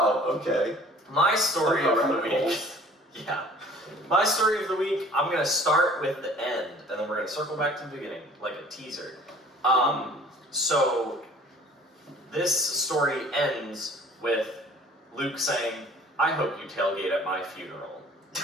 Okay. My story of the Rabbit week. holes. Yeah. My story of the week, I'm going to start with the end, and then we're going to circle back to the beginning, like a teaser. So, this story ends with Luke saying, I hope you tailgate at my funeral.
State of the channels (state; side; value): normal; both; correlation 0.50